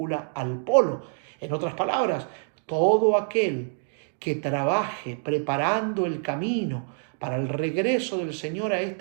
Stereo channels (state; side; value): silent; left; 56 dB below the other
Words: al polo. En otras palabras, todo aquel que trabaje preparando el camino para el regreso del Señor a